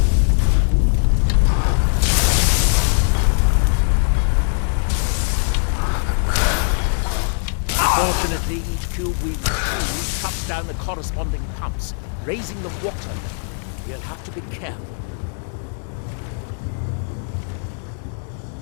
Fortunately, each cube we retrieve cuts down the corresponding pumps, raising the water level. We'll have to be careful.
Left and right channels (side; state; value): right; silent; digital silence